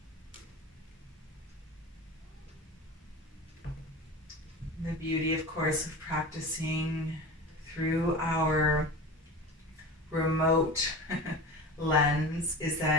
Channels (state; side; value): normal; both; correlation 0.32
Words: beauty, of course, of practicing through our remote lens is